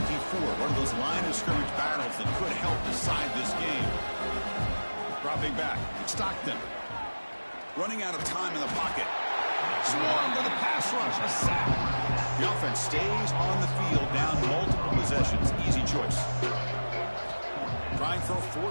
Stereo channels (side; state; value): both; inverted; correlation -1.00